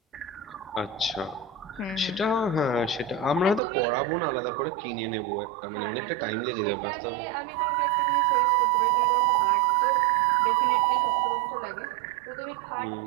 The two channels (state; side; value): drops out; left; at 3.6 s